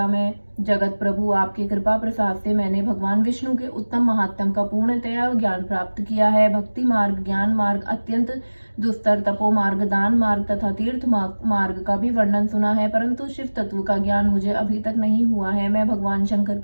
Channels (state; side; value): inverted; both; correlation -1.00